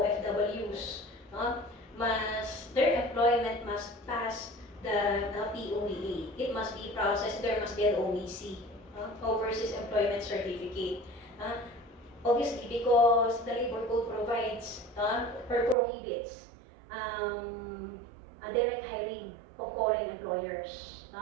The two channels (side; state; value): left; drops out; at 15.8 s